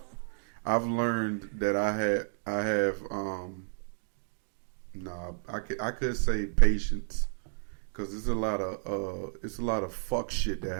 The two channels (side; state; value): left; silent; digital silence